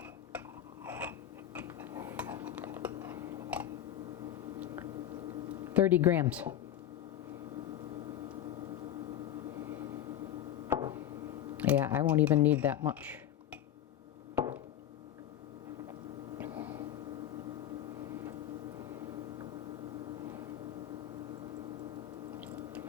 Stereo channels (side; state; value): right; quieter; 11.2 dB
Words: 30 grams. Yeah, I won't even need that much.